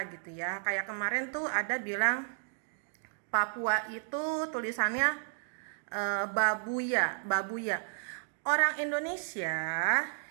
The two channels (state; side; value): silent; left; digital silence